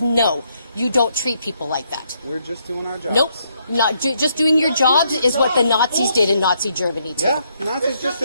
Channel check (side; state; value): both; inverted; correlation -0.74